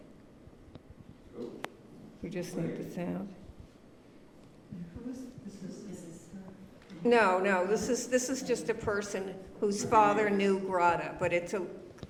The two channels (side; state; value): both; identical; correlation 1.00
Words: We just need the sound. No, this is just a person whose father knew Grada, but